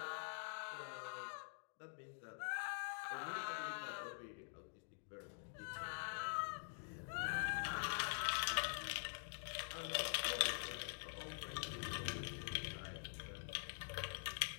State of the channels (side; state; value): right; silent; digital silence